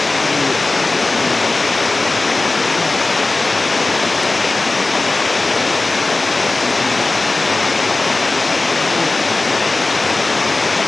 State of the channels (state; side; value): quieter; right; 3.2 dB